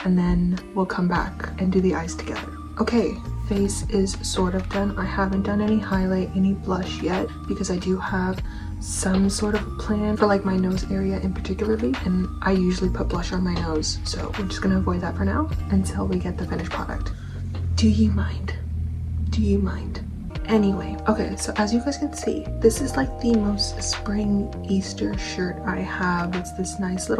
and then we'll come back and do the eyes together. Okay, face is sort of done. I haven't done any highlight, any blush yet, because I do have some sort of a plan for like my nose area in particularly, and I usually put blush on my nose. So we're just going to avoid that for now until we get the finished product. Do you mind? Do you mind? Anyway, okay, so as you guys can see, this is like the most spring Easter shirt I have. It's this nice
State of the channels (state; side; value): identical; both; correlation 1.00